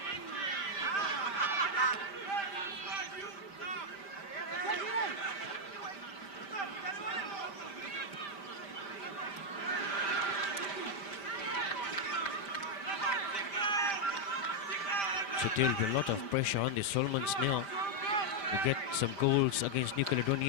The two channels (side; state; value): right; late; 5.1 ms